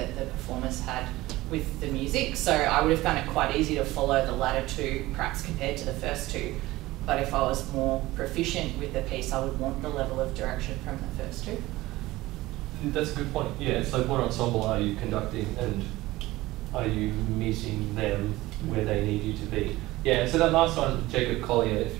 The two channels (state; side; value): quieter; left; 18.3 dB